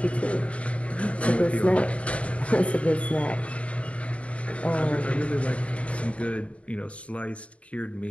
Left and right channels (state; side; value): late; right; 0.063 ms